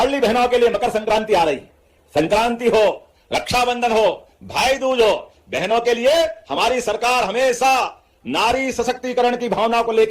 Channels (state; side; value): identical; both; correlation 1.00